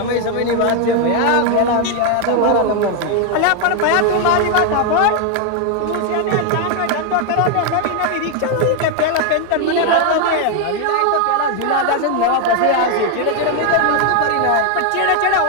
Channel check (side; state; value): both; different; correlation 0.01